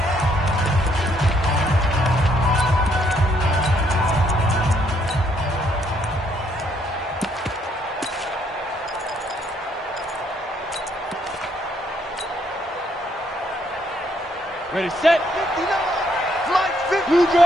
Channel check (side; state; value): both; normal; correlation 0.70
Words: Ready, set. Blue